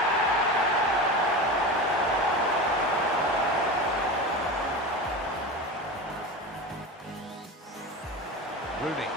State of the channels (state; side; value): normal; both; correlation 0.26